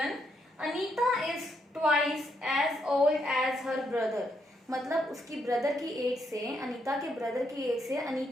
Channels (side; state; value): both; normal; correlation 0.77